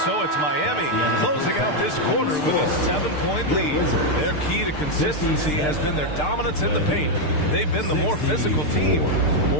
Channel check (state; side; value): late; right; 6.7 ms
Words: it's Miami closing out this quarter with a 7-point lead. Their key to consistency has been their dominance in the paint. They've been the more physical team.